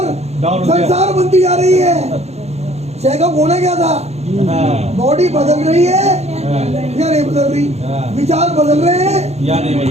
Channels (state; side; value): late; left; 0.31 ms